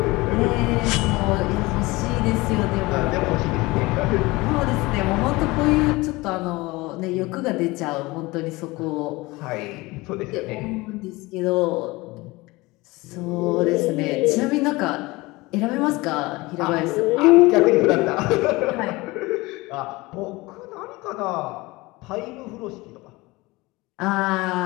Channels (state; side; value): quieter; right; 22.0 dB